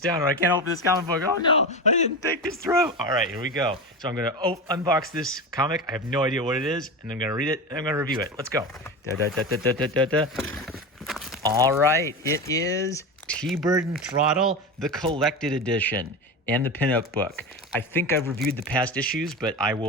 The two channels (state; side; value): normal; both; correlation 0.23